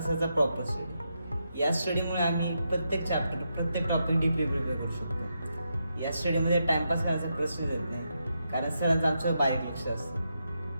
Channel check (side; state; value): both; inverted; correlation -0.84